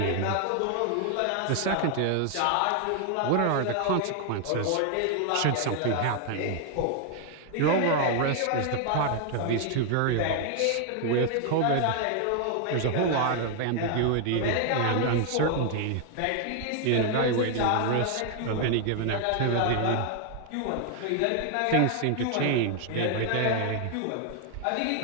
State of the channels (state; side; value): different; both; correlation 0.00